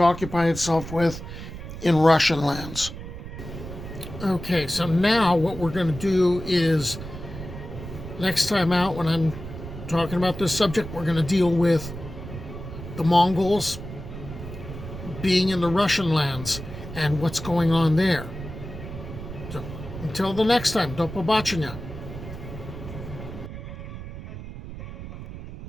occupy itself with in Russian lands. Okay, so now what we're going to do is, next time out when I'm talking about this subject, we're going to deal with the Mongols being in the Russian lands and what's going on there. So until the next time, do побачення.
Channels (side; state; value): right; noise; rumble, 10 dB below the sound